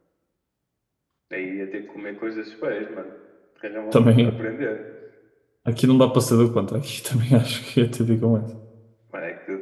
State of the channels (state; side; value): identical; both; correlation 1.00